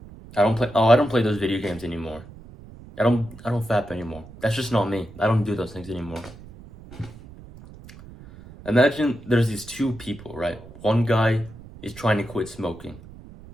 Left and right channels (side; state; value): right; noise; rumble, 18 dB below the sound